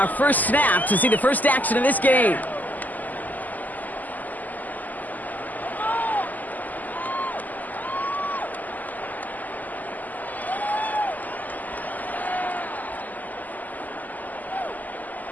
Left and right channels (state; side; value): late; right; 0.082 ms